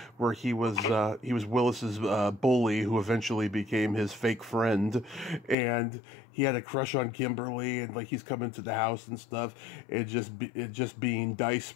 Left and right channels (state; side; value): drops out; right; at 5.6 s